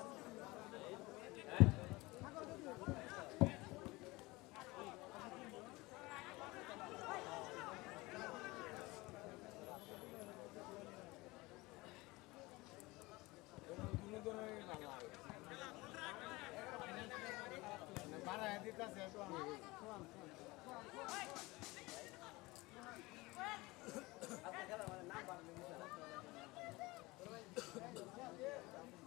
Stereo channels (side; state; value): right; quieter; 22.1 dB